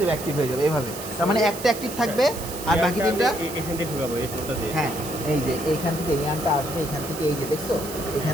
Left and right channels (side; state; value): right; noise; hiss, 11 dB below the sound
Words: যাবে, অ্যাক্টিভ হয়ে যাবে এইভাবে। তার মানে একটা অ্যাক্টিভ থাকবে আর বাকি তিনটা, এখান থেকে ঢুকাবো এই পোর্টটা দিয়ে। হ্যাঁ এই যে এইখান থেকে ইয়ানটা আসবে, এখান থেকে এই যে দেখছো